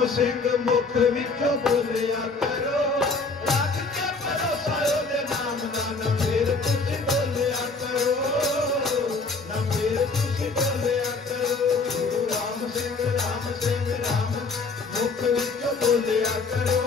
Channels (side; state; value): right; quieter; 4.0 dB